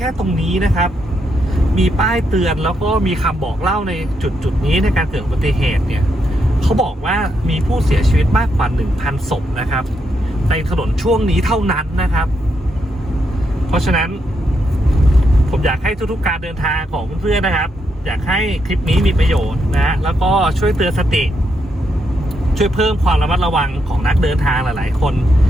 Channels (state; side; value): normal; both; correlation 0.80